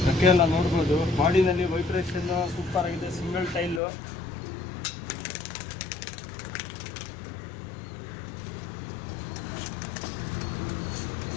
ಅಕ್ಕೆ ಎಲ್ಲ ನೋಡ್ಬೋದು, ಬಾಡಿನಲ್ಲಿ ವೈಬ್ರೇಷನ್ ಸೂಪರ್ ಆಗಿದೆ. Single tile.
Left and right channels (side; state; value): right; drops out; at 3.8 s